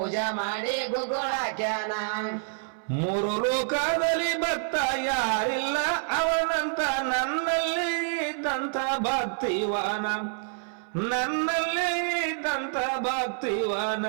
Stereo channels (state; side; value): silent; left; 60 dB below the other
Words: ಮಾಡಿ ಗುಗ್ಗುಳಕ್ಯಾನ ಮೂರು ಲೋಕದಲ್ಲಿ ಭಕ್ತ ಯಾರಿಲ್ಲ ಅವನಂತ ನನ್ನಲ್ಲಿ ಇದ್ದಂತ ಭಕ್ತಿವಾನ ನನ್ನಲ್ಲಿ ಇದ್ದಂತ ಭಕ್ತಿವಾನ